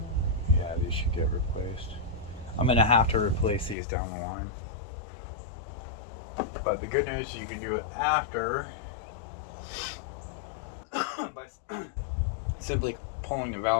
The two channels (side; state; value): right; drops out; at 3.8 s